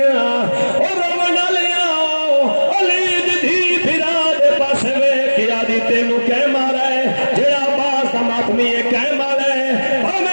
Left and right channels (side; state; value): both; inverted; correlation -1.00